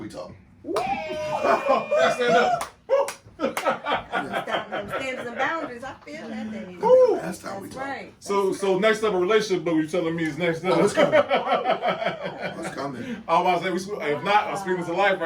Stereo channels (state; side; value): identical; both; correlation 1.00